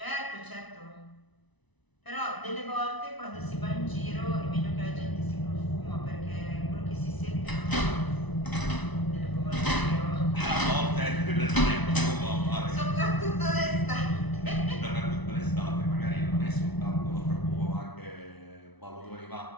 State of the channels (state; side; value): late; right; 1.0 ms